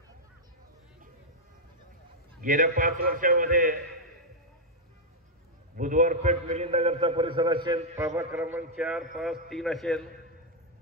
गेल्या 5 वर्षामध्ये बुधवार पेठ, मिलिंदनगरचा परिसर असेल, प्रभाग क्रमांक 4, 5, 3 असेल,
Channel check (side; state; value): both; normal; correlation -0.03